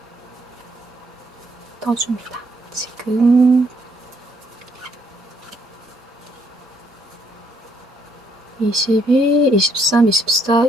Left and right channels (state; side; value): normal; both; correlation 0.71